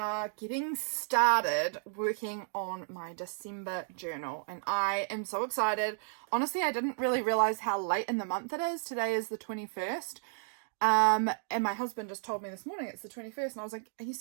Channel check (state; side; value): silent; left; digital silence